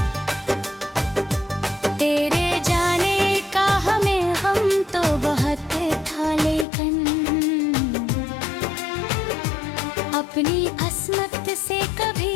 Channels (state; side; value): drops out; right; at 6.7 s